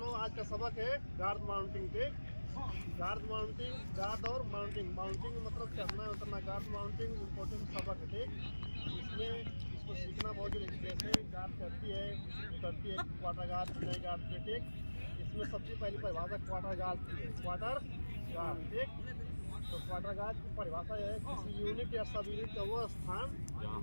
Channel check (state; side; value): inverted; both; correlation -1.00